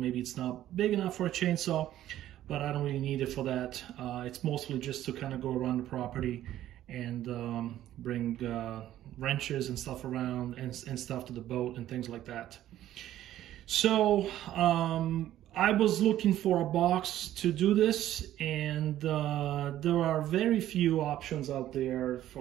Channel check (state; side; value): quieter; left; 12.9 dB